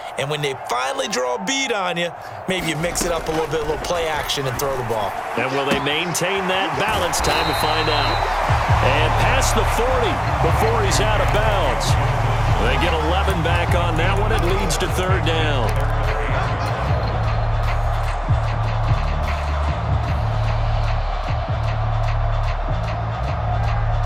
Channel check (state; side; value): identical; both; correlation 1.00